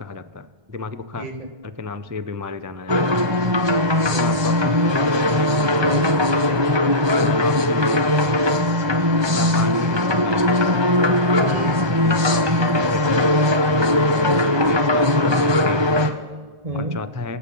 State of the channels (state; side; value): late; left; 1.2 ms